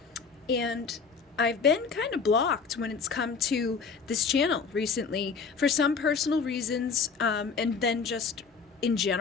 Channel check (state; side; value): quieter; right; 5.4 dB